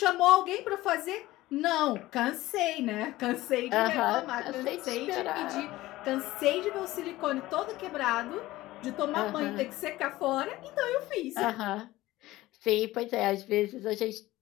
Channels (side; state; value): right; quieter; 17.4 dB